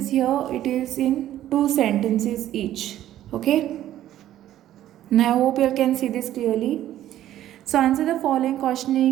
Here it is in two sentences each. Okay, and I hope you can see this clearly. So answer the following question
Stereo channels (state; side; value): quieter; left; 12.7 dB